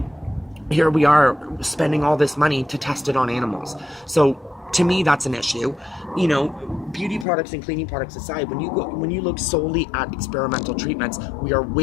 here we are spending all this money to test it on animals. So to me, that's an issue. Beauty products and cleaning products aside, when you look solely at experimental treatments, we are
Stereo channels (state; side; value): drops out; right; at 7.2 s